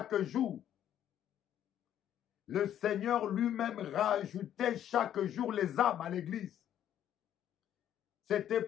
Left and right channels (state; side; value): quieter; right; 10.7 dB